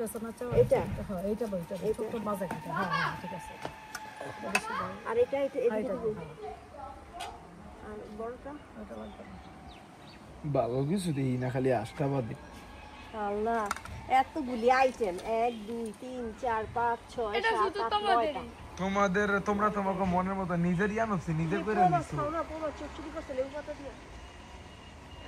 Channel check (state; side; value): identical; both; correlation 1.00